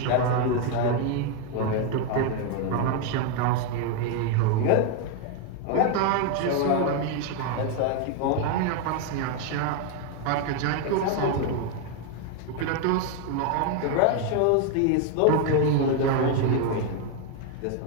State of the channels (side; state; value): both; different; correlation 0.01